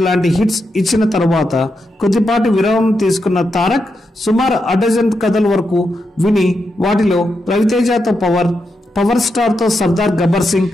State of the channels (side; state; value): both; normal; correlation 0.85